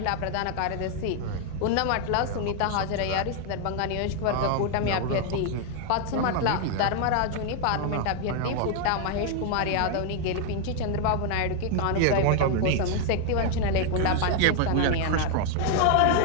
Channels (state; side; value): different; both; correlation 0.00